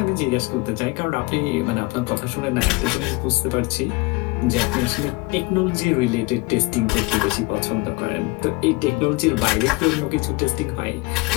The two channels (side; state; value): right; quieter; 25.0 dB